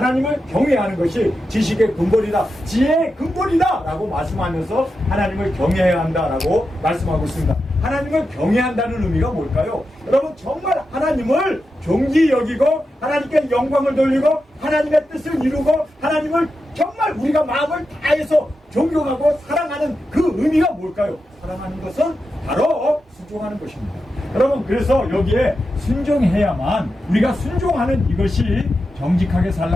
경외하는 것이 지식의 근본이다, 지혜의 근본이다 라고 말씀하면서 하나님을 경외해야 한다라고 말씀하고 있습니다. 하나님을 경외한다는 의미가 뭘까요? 여러분, 정말 하나님을 존귀 여기고 하나님께 영광을 돌리고 하나님의 뜻을 이루고 하나님을 정말 우리가 마음을 다해서 존경하고 사랑하는 그 의미가 뭘까요? 사랑하는 것은 바로 순종하는 것입니다. 여러분, 그래서 여기에 순종해야만, 우리가 순종하는 이것이 정직하게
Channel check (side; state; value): both; normal; correlation 0.89